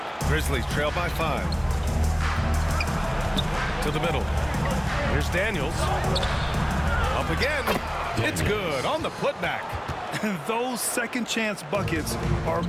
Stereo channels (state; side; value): identical; both; correlation 1.00